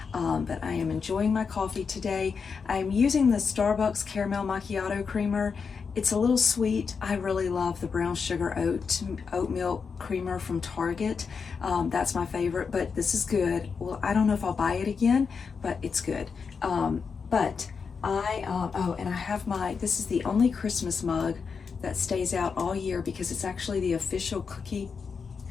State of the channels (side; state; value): right; quieter; 5.6 dB